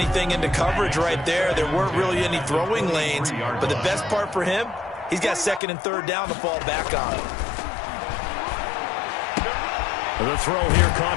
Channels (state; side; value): drops out; right; at 5.6 s